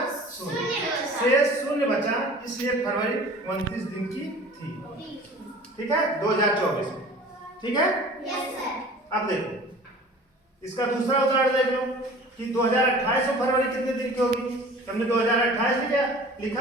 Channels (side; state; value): both; normal; correlation 0.44